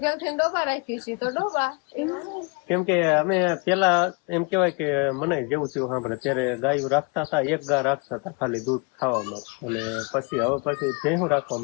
કેમ કે અમે પેલા એમ કેવાય કે મને જેવું તેવું સાંભળે ત્યારે ગાયું રાખતા હતા એક ગા રાખતા હતા ખાલી દૂધ ખાવામાં અને પછી ભેહું રાખવા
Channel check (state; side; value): quieter; right; 32.0 dB